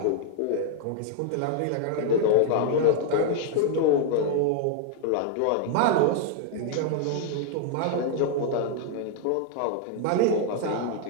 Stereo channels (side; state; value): both; different; correlation 0.00